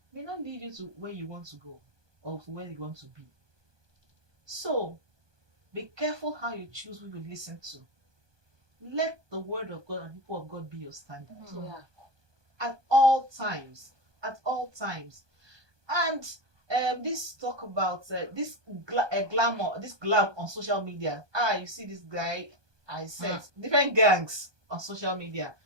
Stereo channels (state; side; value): late; left; 1.2 ms